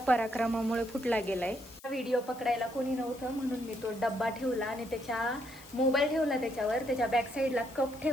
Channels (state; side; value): noise; left; hiss, 21 dB below the sound